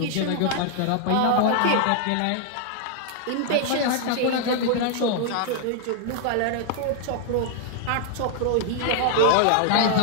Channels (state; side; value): different; both; correlation 0.00